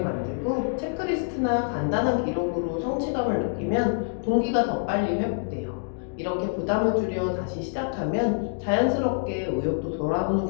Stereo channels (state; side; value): silent; right; digital silence